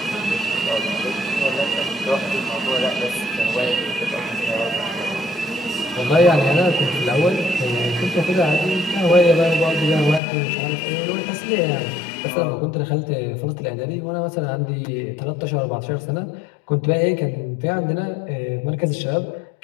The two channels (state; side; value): drops out; right; at 10.2 s